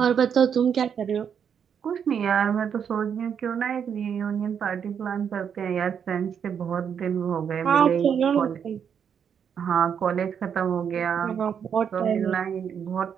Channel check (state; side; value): quieter; left; 7.7 dB